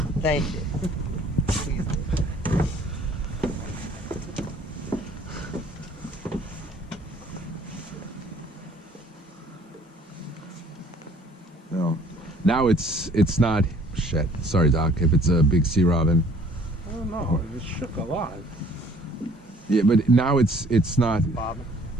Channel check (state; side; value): normal; both; correlation 0.57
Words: Thank you. No. Now it's not. Shit. Sorry, Doc. If it's a big sea robin. I don't know. It shook a lot. Yeah, but now it's not. Bobbing.